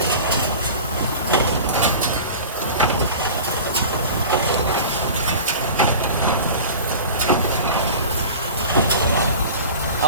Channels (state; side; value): inverted; both; correlation -0.37